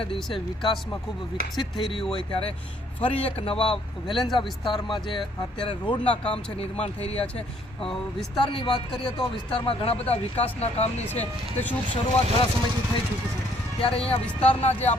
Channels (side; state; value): both; normal; correlation 0.65